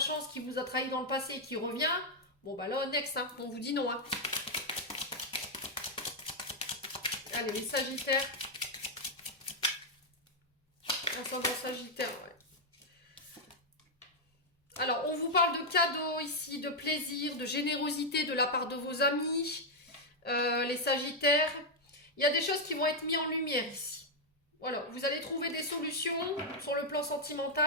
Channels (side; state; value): both; normal; correlation 0.00